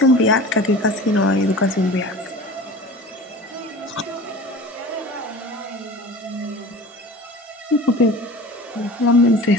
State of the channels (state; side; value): normal; both; correlation 0.38